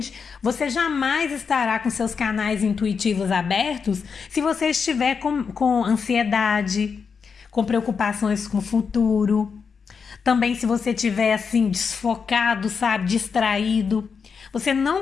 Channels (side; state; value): right; quieter; 5.8 dB